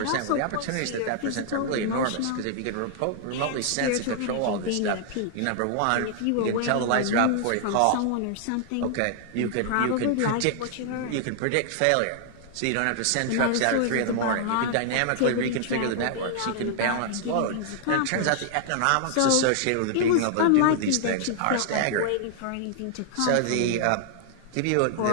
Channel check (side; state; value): both; different; correlation 0.00